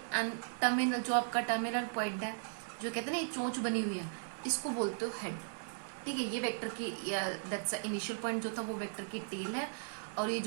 एंड टर्मिनल, जो आपका टर्मिनल पॉइंट है, जो कहते हैं ना ये चोंच बनी हुई है, इसको बोलते हो हेड. ठीक है. ये वेक्टर की दैट्स इनिशियल पॉइंट जो था वो वेक्टर की टेल है और ये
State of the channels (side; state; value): left; silent; digital silence